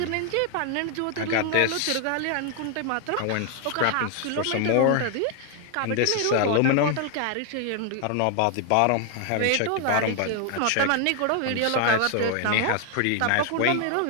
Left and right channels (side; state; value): both; different; correlation 0.00